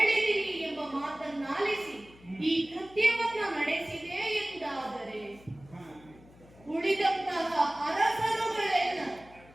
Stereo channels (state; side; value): noise; left; hum, 24 dB below the sound